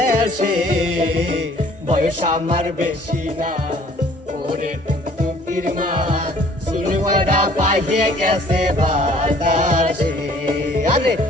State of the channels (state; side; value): normal; both; correlation 0.55